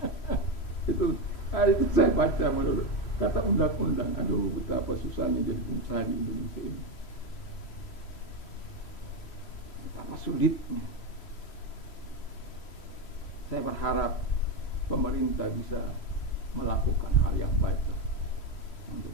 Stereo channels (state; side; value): late; right; 3.1 ms